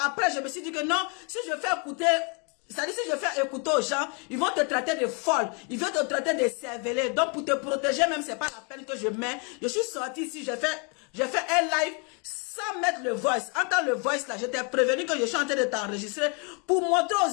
Après, je me suis dit que non, si je fais écouter, c'est-à-dire si je fais écouter aux gens, ils vont te traiter de folle, ils vont te traiter de cervelée. Donc pour te protéger même, c'est pas la peine que je mets. Je suis sorti ici, j'ai fait un live sans mettre le voice. Entends le voice là, je t'ai prévenu que je suis en train de t'enregistrer pour montrer aux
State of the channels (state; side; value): quieter; right; 35.3 dB